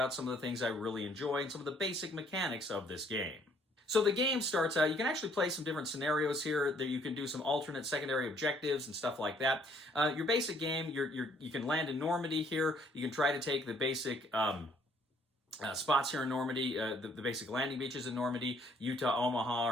some of the things I really enjoy and some of the basic mechanics of this game. So the game starts out, you can actually play some different scenarios here, that you can do some alternate secondary objectives and stuff like that. Your basic game, you can land in Normandy here, you can try to take the basic spots here in Normandy, the basic landing beaches in Normandy, Utah, Omaha,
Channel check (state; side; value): normal; both; correlation 0.64